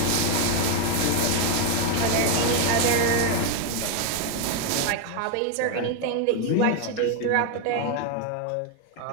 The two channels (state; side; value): different; both; correlation 0.01